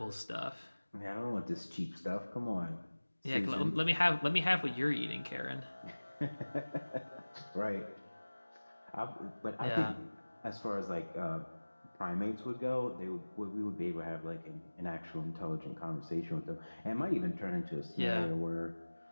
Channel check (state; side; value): inverted; both; correlation -1.00